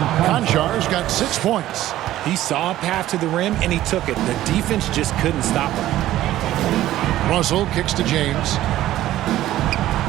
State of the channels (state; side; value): quieter; left; 14.2 dB